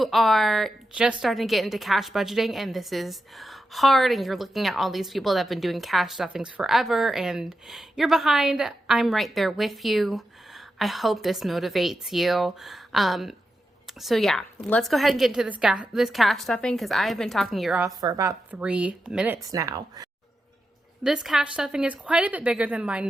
are just starting to get into cash budgeting and this is hard and you're looking at all these people that have been doing cash stuffings forever and you're behind, I'm right there with you. I hope this motivates you. So yeah, let's go ahead and get into this cash stuffing, because I have been talking your off for about 3 minutes now. This cash stuffing is quite a bit bigger than my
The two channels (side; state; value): both; normal; correlation 0.88